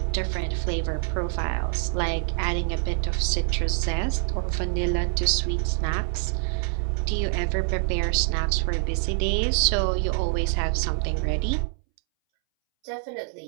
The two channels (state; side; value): silent; left; 61 dB below the other